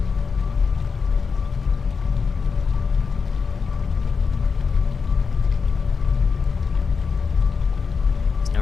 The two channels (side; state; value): right; quieter; 5.4 dB